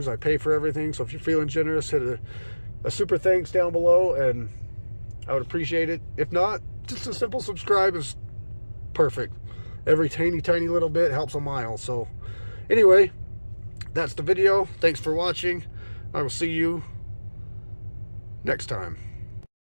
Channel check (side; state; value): both; inverted; correlation -1.00